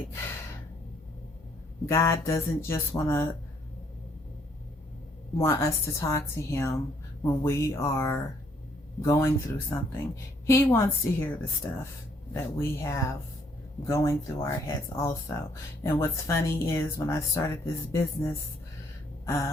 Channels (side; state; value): both; normal; correlation 0.67